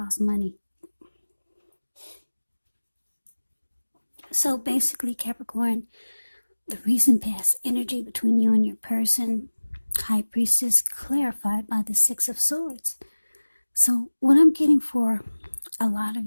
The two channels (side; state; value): both; inverted; correlation -1.00